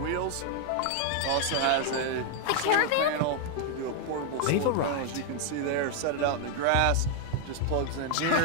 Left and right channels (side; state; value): both; different; correlation 0.00